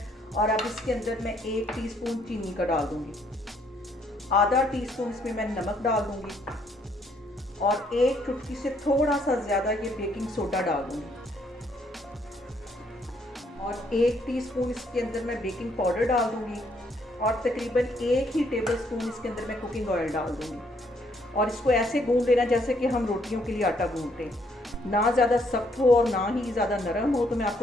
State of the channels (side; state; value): both; normal; correlation 0.69